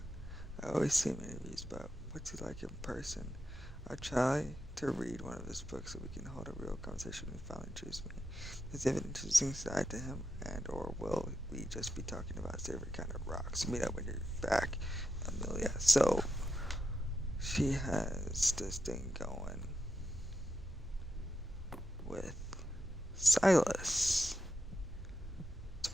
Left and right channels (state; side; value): normal; both; correlation 0.86